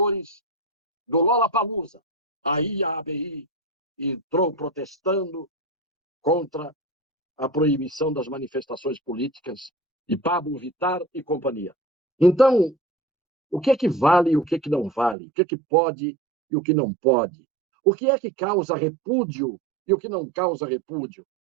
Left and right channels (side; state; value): left; drops out; at 15.2 s